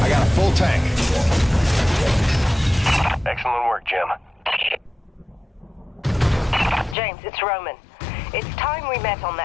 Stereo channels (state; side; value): drops out; right; at 7.0 s